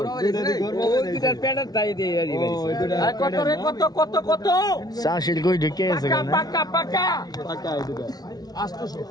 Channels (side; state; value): right; late; 0.19 ms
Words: আর কত রে কত কত কত চাষির কই ঢুকে আছে পাকা পাকা পাকা টাকা এই দুটো